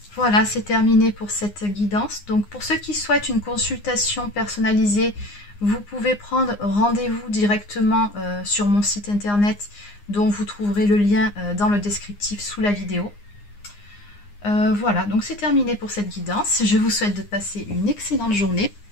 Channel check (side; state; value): right; late; 9.7 ms